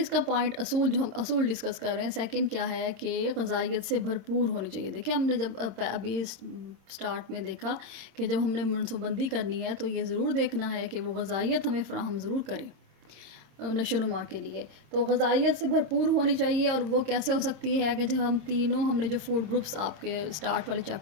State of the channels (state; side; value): late; left; 26 ms